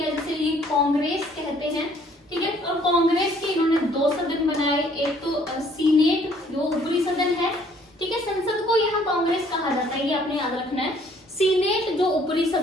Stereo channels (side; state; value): both; normal; correlation 0.61